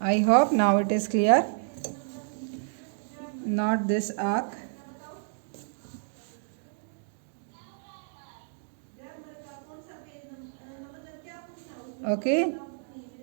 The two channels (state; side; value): silent; left; digital silence